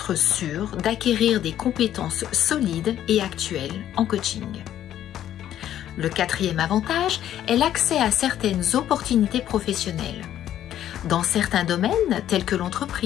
sûr d'acquérir des compétences solides et actuelles en coaching. Le quatrième avantage est l'accès à certaines opportunités professionnelles. Dans certains domaines, tels que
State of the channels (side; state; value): right; quieter; 11.5 dB